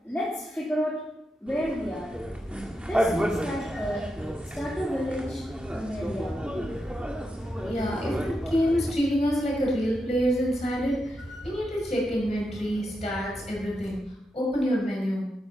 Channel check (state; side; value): normal; both; correlation 0.86